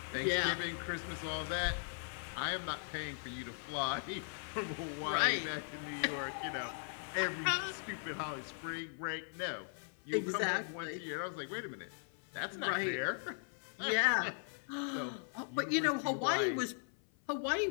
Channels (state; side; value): silent; right; 52 dB below the other